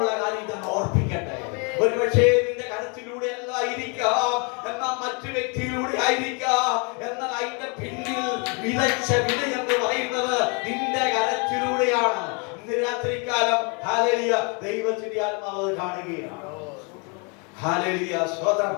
കാര്യം ഇതെന്ന് ഓർപ്പിക്കട്ടെ. ഒരുപക്ഷേ നിന്റെ കരത്തിലൂടെ അല്ലായിരിക്കാം, എന്നാൽ മറ്റു വ്യക്തിയിലൂടെ ആയിരിക്കാം. എന്നാൽ അതിന്റെ പിന്നിൽ വിതച്ച വിത എന്ന് പറയുന്നത് നിന്റെ കരത്തിലൂടെയാണ്. ഇന്ന് രാത്രികാലം ഹല്ലേലൂയ ദൈവത്തിന്റെ ആത്മാവ് കാണുകയാണ്. ഹല്ലേലൂയ സ്തോത്രം.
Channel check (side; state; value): right; quieter; 33.8 dB